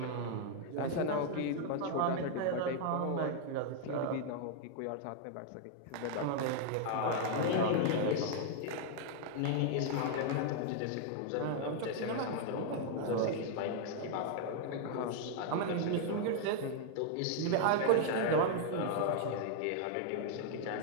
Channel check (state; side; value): different; both; correlation 0.00